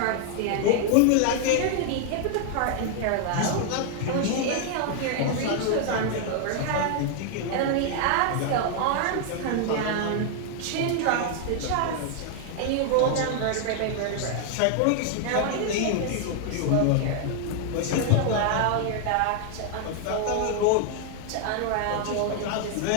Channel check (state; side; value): different; both; correlation 0.00